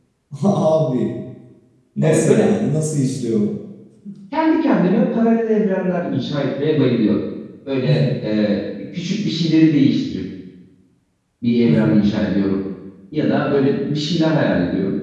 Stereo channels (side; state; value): both; identical; correlation 1.00